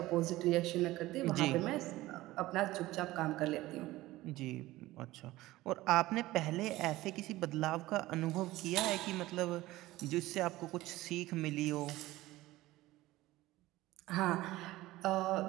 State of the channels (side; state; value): left; quieter; 17.6 dB